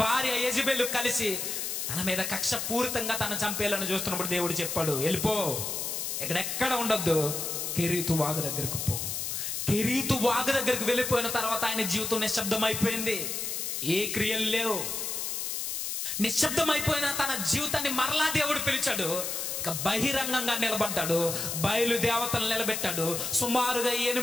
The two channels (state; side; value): noise; left; hiss, 3 dB below the sound